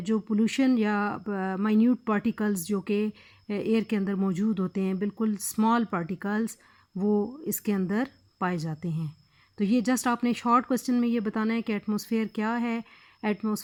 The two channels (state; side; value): identical; both; correlation 1.00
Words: पोल्यूशन या माइन्यूट पार्टिकल्स जो कि एयर के अंदर मौजूद होते हैं, बिल्कुल स्मॉल पार्टिकल्स, वो इसके अंदर पाए जाते हैं। तो ये जस्ट आपने शॉर्ट क्वेश्चन में ये बताना है कि एटमॉस्फेयर क्या है।